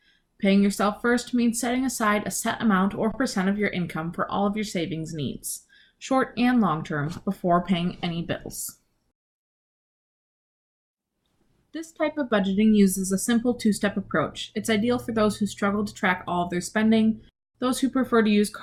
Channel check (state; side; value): identical; both; correlation 1.00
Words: Paying yourself first means setting aside a set amount or percent of your income for all of your savings needs, short and long term, before paying any bills. This type of budgeting uses a simple two-step approach. It's ideal for those who struggle to track all of their spending, those who prefer to use